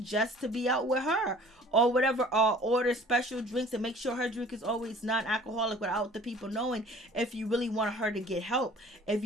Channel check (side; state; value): both; normal; correlation 0.49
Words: Just to be out with her, or whatever, or order special drinks and make sure her drink is always non-alcoholic without the people knowing, if you really want her to get help, if